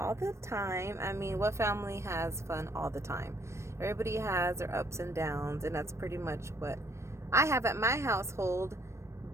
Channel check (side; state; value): left; late; 0.13 ms